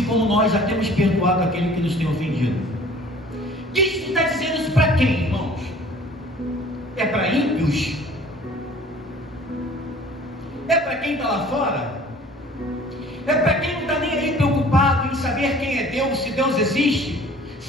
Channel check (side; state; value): both; normal; correlation 0.50